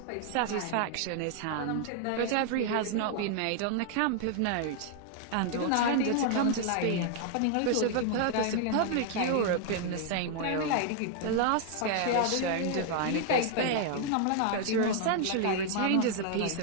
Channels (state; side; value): different; both; correlation 0.00